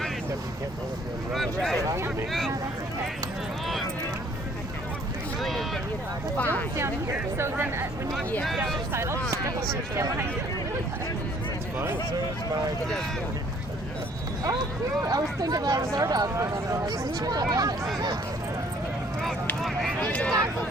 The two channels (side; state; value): both; normal; correlation 0.59